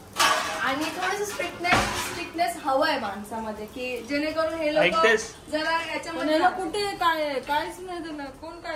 आणि थोडंसं स्ट्रिक्टनेस हवंय माणसामध्ये की जेणेकरून हे लोक जरा याच्यामध्ये कुठे काय काहीच नाही त्याला. कोण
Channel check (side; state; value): both; identical; correlation 1.00